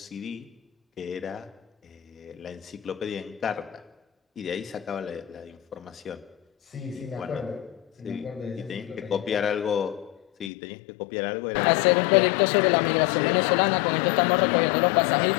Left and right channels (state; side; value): drops out; right; at 10.5 s